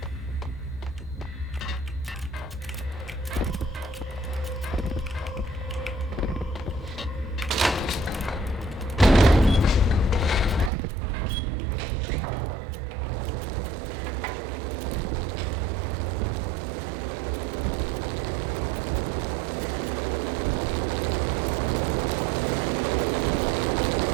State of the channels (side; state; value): left; drops out; at 10.7 s